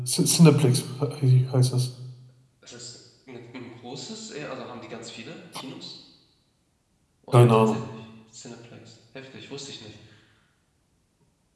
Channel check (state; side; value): identical; both; correlation 1.00